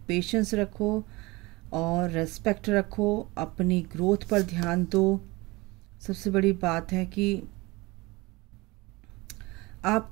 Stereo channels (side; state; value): left; quieter; 22.8 dB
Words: पेशेंस रखो और रेस्पेक्ट रखो, अपनी ग्रोथ पर ध्यान दो। सबसे बड़ी बात है कि